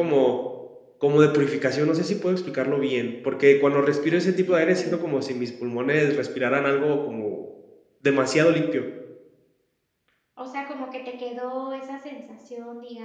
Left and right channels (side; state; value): both; identical; correlation 1.00